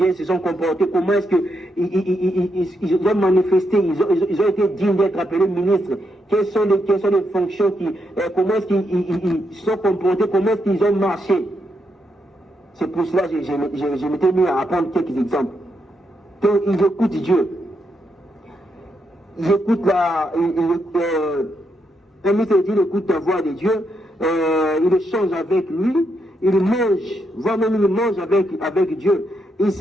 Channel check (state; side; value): normal; both; correlation 0.81